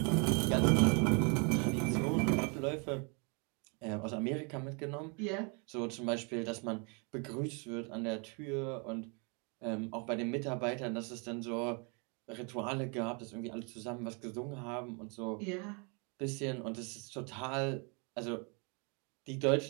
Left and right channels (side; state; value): left; quieter; 34.2 dB